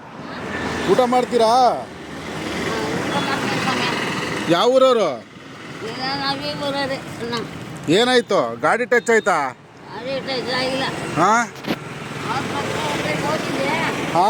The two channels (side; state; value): both; identical; correlation 1.00